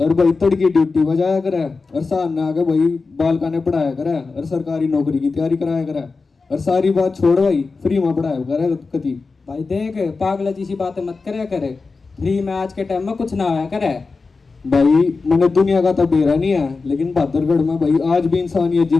भाई तड़की ड्यूटी बजाया करे और सामने आके भाई बालका ने पढ़ाया करे और सरकारी नौकरी की तैयारी कराया करे और सारी बात छोड़ भाई फ्री में पढ़ाया करे कति। भाई देख, पागल जैसी बातें मत करे करे। फ्री में आज के टाइम में कुछ ना होया करे। भाई मैंने दुनिया का तो बेरा नहीं है, लेकिन बहादुरगढ़ में भाई आज भी इंसानियत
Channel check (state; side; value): quieter; right; 4.2 dB